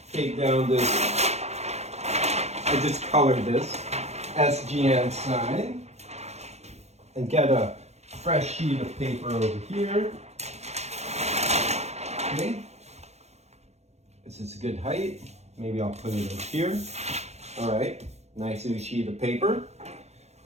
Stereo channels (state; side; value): late; left; 0.31 ms